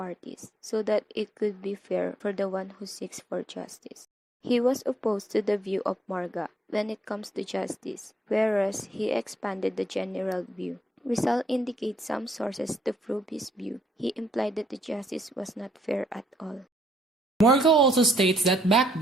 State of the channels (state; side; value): normal; both; correlation 0.71